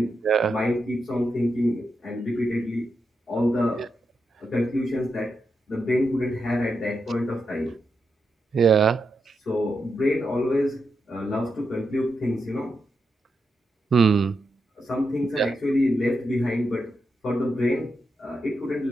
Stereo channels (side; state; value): both; normal; correlation 0.85